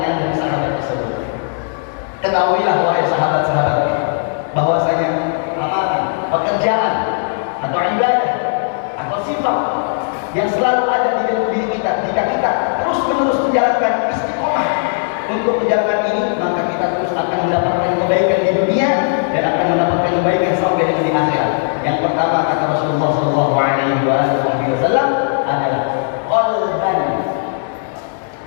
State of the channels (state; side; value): silent; right; digital silence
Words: dari sahabat tersebut. Ketahuilah wahai sahabat-sahabatku, bahwasanya amalan, pekerjaan atau ibadah atau sifat yang selalu ada di dalam diri kita, jika kita terus menerus menjalankan istiqomah untuk menjalankan ini, maka kita terus akan mendapatkan kebaikan di dunia dan akan mendapatkan kebaikan sampai dengan di akhirat. Yang pertama kata Rasulullah Shallallahu Alaihi Wasallam adalah